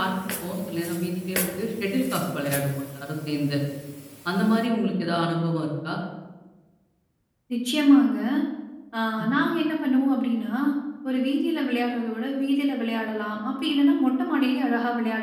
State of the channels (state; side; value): identical; both; correlation 1.00